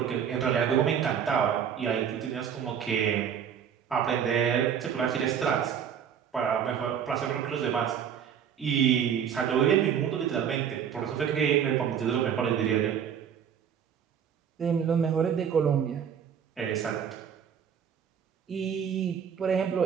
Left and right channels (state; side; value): quieter; left; 8.2 dB